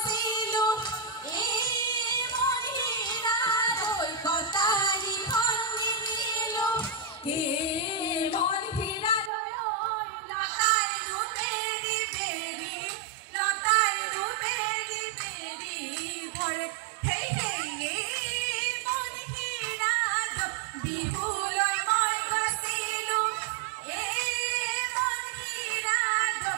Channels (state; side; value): drops out; left; at 9.3 s